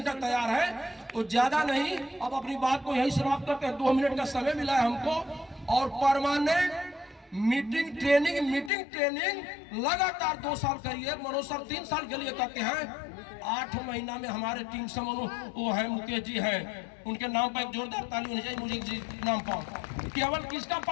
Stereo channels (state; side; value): drops out; right; at 8.7 s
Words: तैयार है। तो ज्यादा नहीं, अब अपनी बात को यही समाप्त करते हैं। 2 मिनट का समय मिला है हमको। और परमानेंट मीटिंग ट्रेनिंग लगातार 2 साल करिए। मनोज सर 3 साल के लिए कहते हैं। 8 महीना में हमारे टीम से वो है मुकेश जी हैं, उनके नाम पर एक जोरदार ताली होनी चाहिए। मुझे जी नाम पावर, केवल किसका